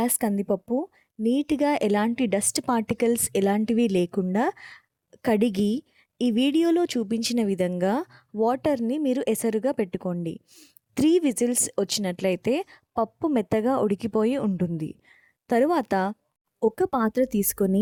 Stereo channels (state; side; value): identical; both; correlation 1.00